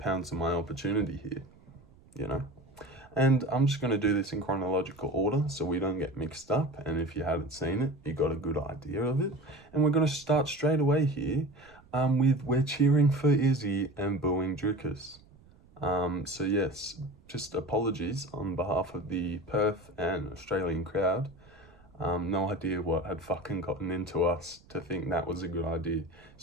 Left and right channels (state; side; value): noise; right; rumble, 26 dB below the sound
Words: on my opportunity here, you know? And I'm just going to do this in chronological order so we don't get mixed up. And if you hadn't seen it, you got a good idea of it. And we're going to start straight away here with we're cheering for Izzy and booing Dricus. So yes, just apologies on behalf of the Perth and Australian crowd. No idea what had fucking gotten into us to think that was a good idea,